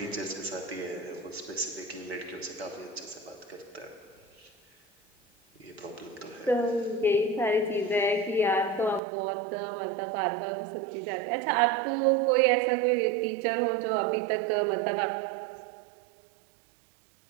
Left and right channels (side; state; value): left; drops out; at 9.0 s